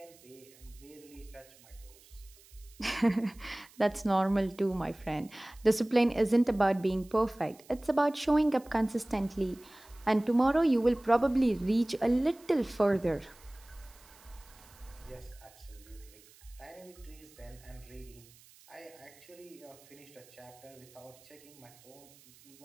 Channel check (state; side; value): noise; right; hiss, 25 dB below the sound